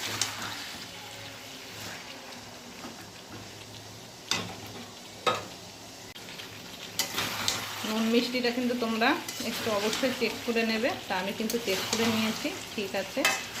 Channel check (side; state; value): both; identical; correlation 1.00